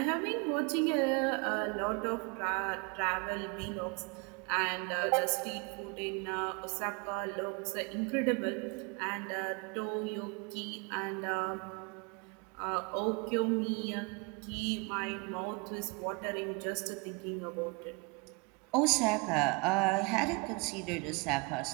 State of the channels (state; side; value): quieter; left; 30.6 dB